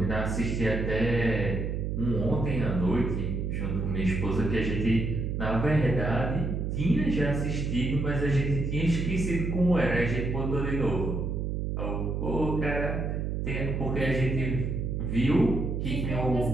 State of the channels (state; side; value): noise; right; hum, 1 dB below the sound